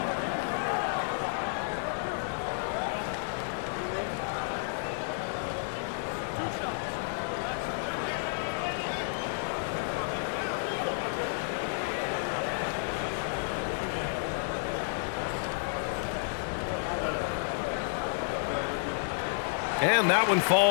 And that one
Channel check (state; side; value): silent; right; digital silence